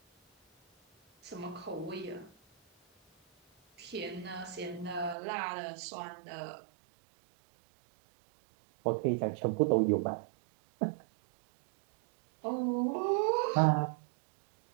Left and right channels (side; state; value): left; drops out; at 5.2 s